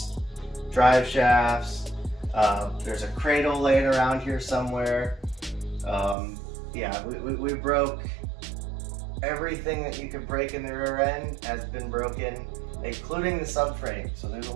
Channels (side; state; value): left; drops out; at 6.2 s